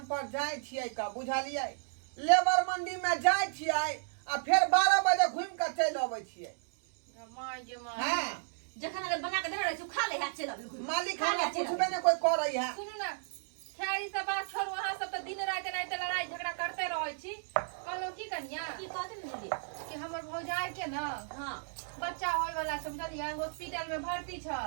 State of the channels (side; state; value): left; silent; 55 dB below the other